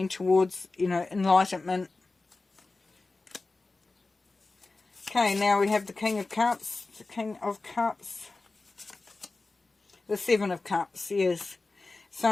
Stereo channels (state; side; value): quieter; right; 3.5 dB